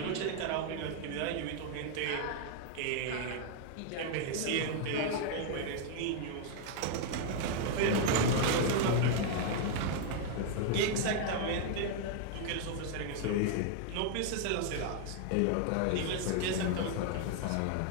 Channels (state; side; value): different; both; correlation 0.00